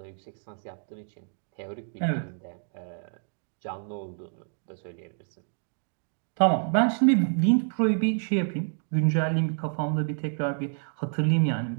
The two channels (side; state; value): left; silent; 59 dB below the other